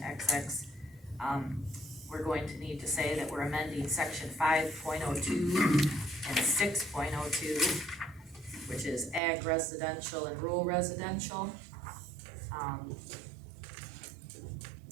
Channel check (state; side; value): drops out; left; at 9.2 s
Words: XX. We're going to need to say that we're amending section 5.02 and 6.02, which is ag residential and rural residential.